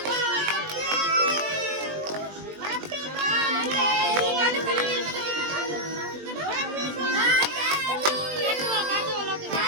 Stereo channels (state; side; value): late; left; 20 ms